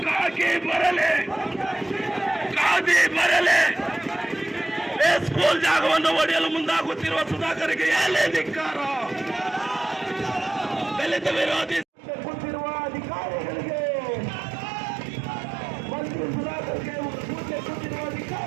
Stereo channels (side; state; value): left; drops out; at 11.9 s